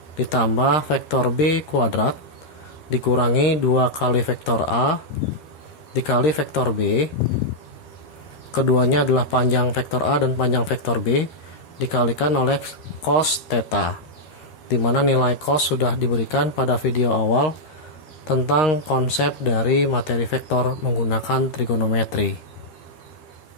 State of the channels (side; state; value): right; late; 13 ms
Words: ditambah vektor B kuadrat dikurangi 2 kali vektor A dikali vektor B. Keduanya adalah panjang vektor A dan panjang vektor B dikalikan oleh cos theta, di mana nilai cos sudah diberikan pada video awal tentang konsep dari materi vektor menggunakan trigonometri.